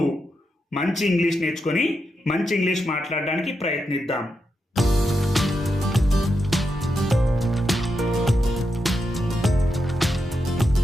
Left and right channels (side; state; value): both; normal; correlation 0.85